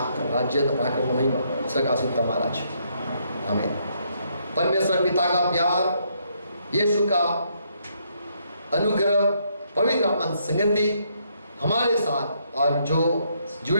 राज्य तो पराक्रम महिमा सकाशित महाराज। आमीन। परमेश्वर पिता का प्यार, यीशु का अनुग्रह, पवित्र आत्मा संगति हमारे साथ, और जो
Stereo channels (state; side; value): inverted; both; correlation -0.73